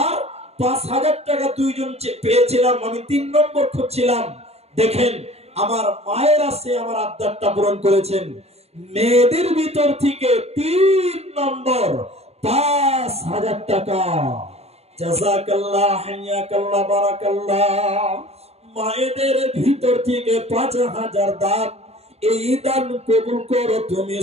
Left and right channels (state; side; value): late; left; 0.30 ms